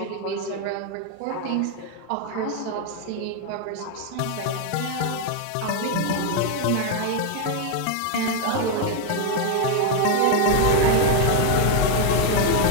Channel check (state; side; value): different; both; correlation 0.01